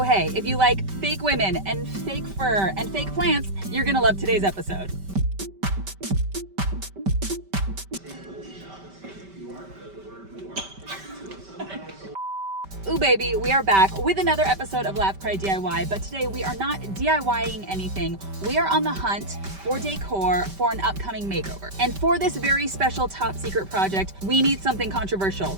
hey, if you like fake women and fake fur and fake plants, you're gonna love today's episode. Ooh baby, we are back with another episode of Laugh Cry DIY, but today we are not DIYing anything. We are on the hunt for decor for an upcoming makeover. And for this very special top secret project, we need something controversial.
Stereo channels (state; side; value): late; left; 5.2 ms